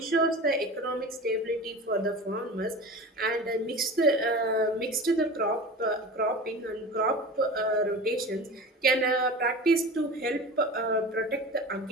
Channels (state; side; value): normal; both; correlation 0.34